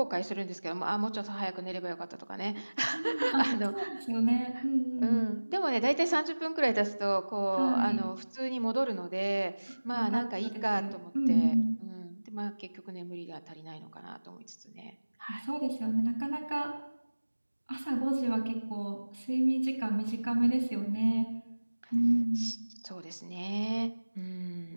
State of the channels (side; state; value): both; inverted; correlation -1.00